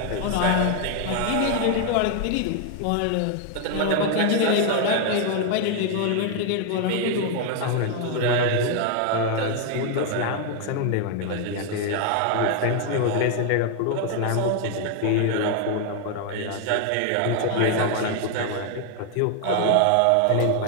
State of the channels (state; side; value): different; both; correlation 0.00